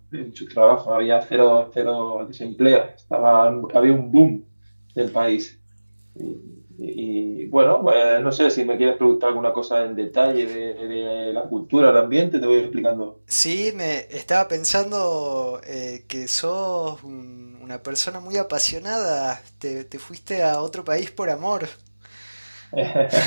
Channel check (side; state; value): both; inverted; correlation -1.00